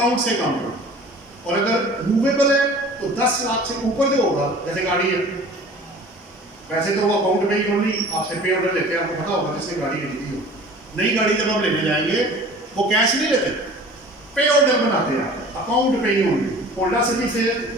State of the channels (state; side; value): normal; both; correlation 0.44